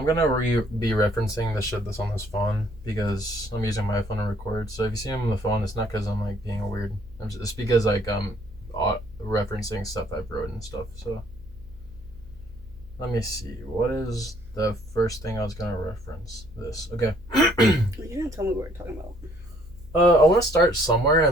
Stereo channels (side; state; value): right; noise; hum, 23 dB below the sound